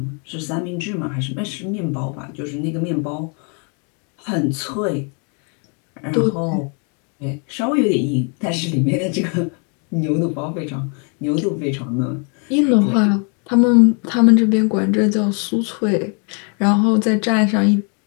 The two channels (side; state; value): right; quieter; 37.9 dB